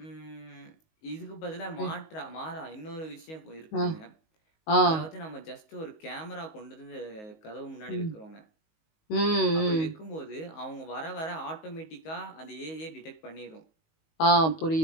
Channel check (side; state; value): right; late; 19 ms